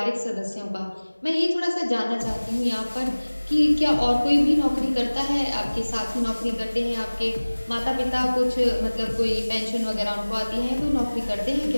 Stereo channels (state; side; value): inverted; both; correlation -1.00